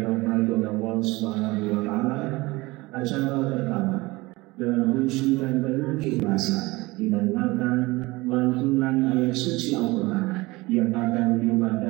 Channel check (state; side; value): quieter; left; 21.7 dB